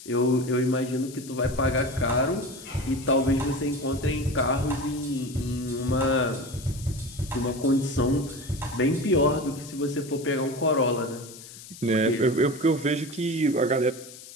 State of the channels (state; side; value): noise; left; hiss, 16 dB below the sound